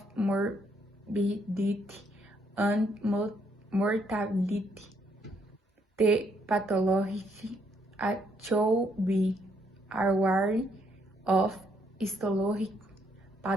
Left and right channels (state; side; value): normal; both; correlation 0.71